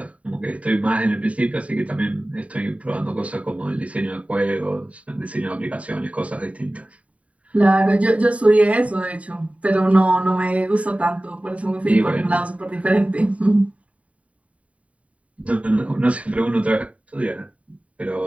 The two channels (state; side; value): late; left; 0.066 ms